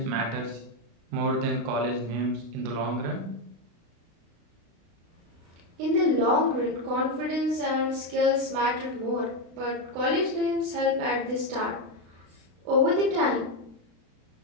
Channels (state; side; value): late; left; 36 ms